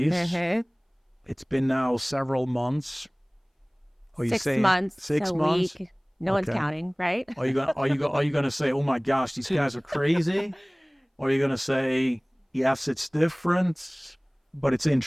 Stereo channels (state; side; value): identical; both; correlation 1.00